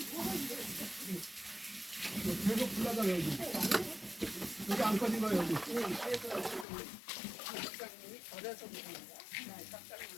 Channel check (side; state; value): right; drops out; at 6.7 s